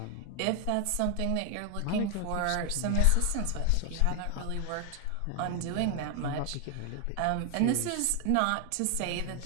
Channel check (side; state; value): both; different; correlation 0.00